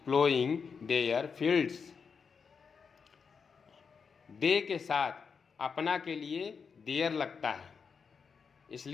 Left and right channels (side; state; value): right; quieter; 5.8 dB